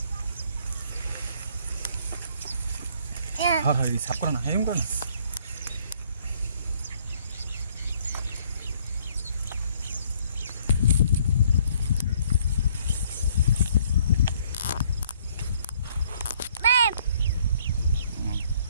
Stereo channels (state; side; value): inverted; both; correlation -0.63